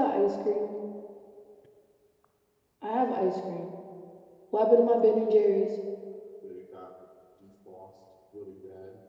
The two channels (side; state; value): both; identical; correlation 1.00